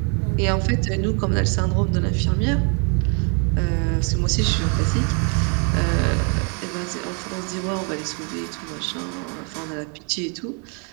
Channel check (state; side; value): quieter; left; 37.6 dB